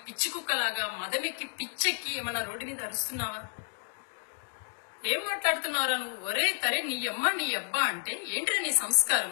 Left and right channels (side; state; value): right; silent; digital silence